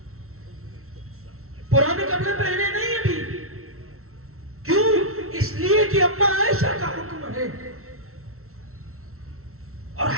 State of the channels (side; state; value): left; late; 0.63 ms